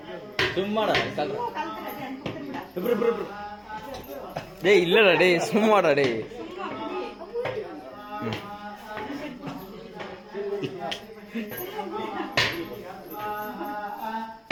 சும்மாடா டேய் இல்லடா டேய் சும்மாடா டேய்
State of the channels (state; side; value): identical; both; correlation 1.00